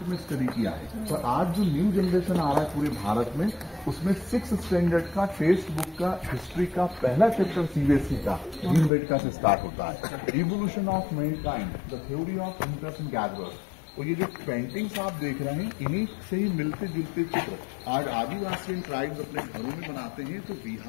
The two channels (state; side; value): drops out; right; at 8.9 s